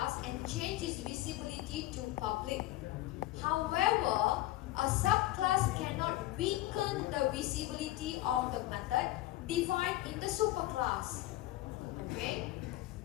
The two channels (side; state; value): right; quieter; 16.5 dB